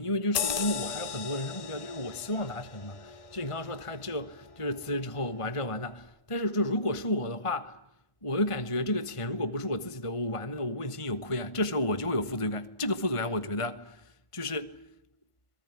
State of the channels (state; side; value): late; right; 1.5 ms